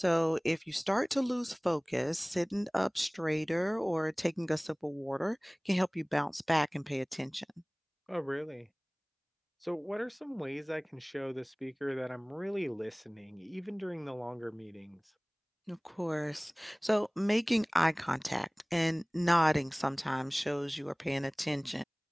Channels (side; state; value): both; identical; correlation 1.00